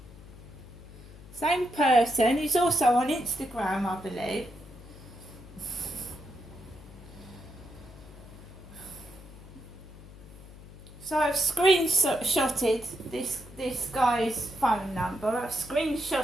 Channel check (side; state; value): left; noise; hum, 18 dB below the sound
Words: Same person. He's also on Instagram, I believe. So I've screenshotted this guy's phone number. I've